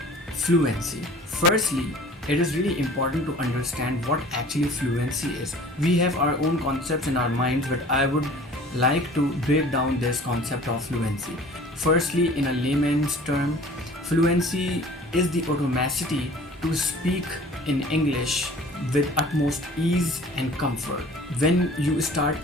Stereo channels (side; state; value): both; normal; correlation 0.47